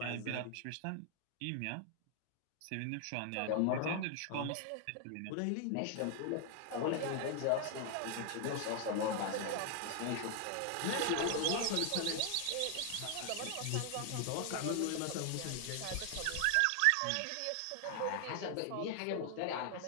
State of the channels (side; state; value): both; different; correlation 0.00